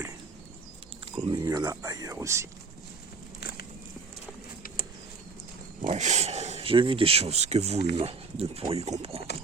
Comme il y en a ailleurs aussi. Bref, j'ai vu des choses que vous, humains, ne pourriez comprendre.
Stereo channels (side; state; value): left; quieter; 4.6 dB